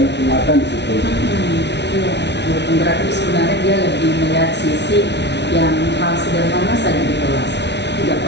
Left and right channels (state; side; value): late; right; 0.50 ms